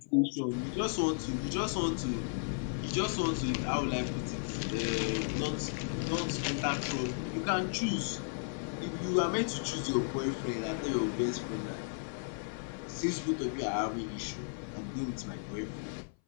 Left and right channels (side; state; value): right; silent; 55 dB below the other